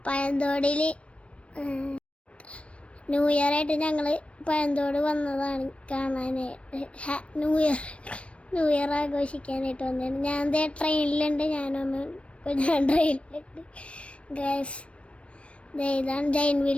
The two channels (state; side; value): late; right; 0.061 ms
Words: പഴന്തോടിൽ ന്യൂ ഇയർ ആയിട്ട് ഞങ്ങൾ പഴന്തോട് വന്നതാണ് കാണാനായിട്ട്. ന്യൂ ഇയർ ആഘോഷിക്കാനായിട്ട് വന്നതാണ്. ഞാൻ ട്രെയിനിലുണ്ട്, ഞാൻ ട്രെയിനിലുണ്ട് ഗൈസ്. ഇതാണ് ജൈൻ